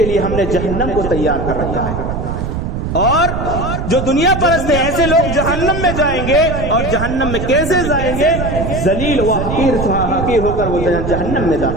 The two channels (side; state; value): right; noise; rumble, 4 dB below the sound